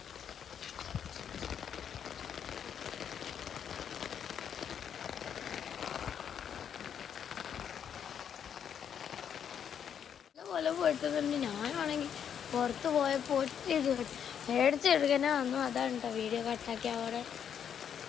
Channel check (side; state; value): right; quieter; 8.4 dB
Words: പോലെ പോയിട്ടുന്നുണ്ട്. ഞാനാണെങ്കിൽ പുറത്ത് പോയപ്പോൾ മേടിച്ചെടുക്കാനേ വന്നു. അതാണ് കേട്ടോ വീഡിയോ കട്ടാക്കി. അവിടെ